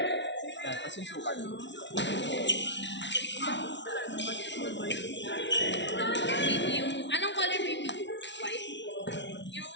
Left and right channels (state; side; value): late; right; 0.52 ms